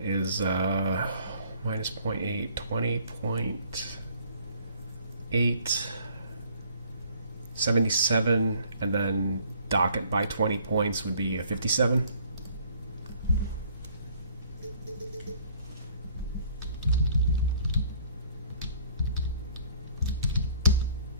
is minus 0.8, 20.8, 77, and then docket by 20 points would be a 57.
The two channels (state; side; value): inverted; both; correlation -0.59